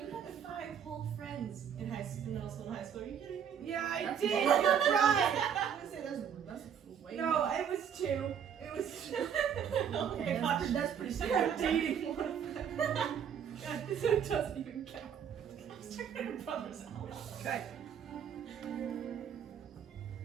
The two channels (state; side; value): quieter; left; 8.1 dB